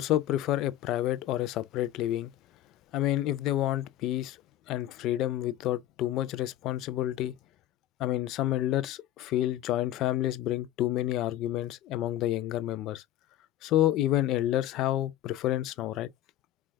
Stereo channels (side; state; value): right; quieter; 13.3 dB